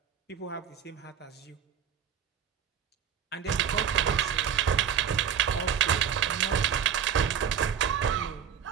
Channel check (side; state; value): left; quieter; 8.3 dB